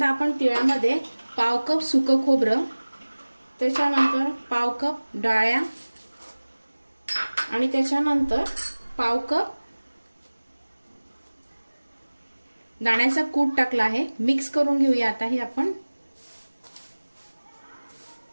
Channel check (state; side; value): inverted; both; correlation -1.00